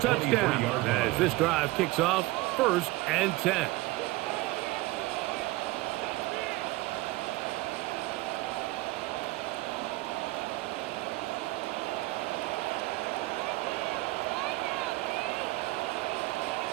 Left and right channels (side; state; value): left; quieter; 20.0 dB